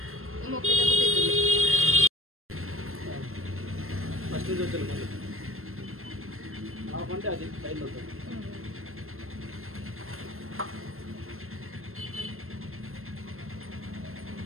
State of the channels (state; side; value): late; left; 0.62 ms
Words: ఫస్ట్ నుంచి వచ్చాను మళ్ళీ అంటే అది టైంలో వస్తుంది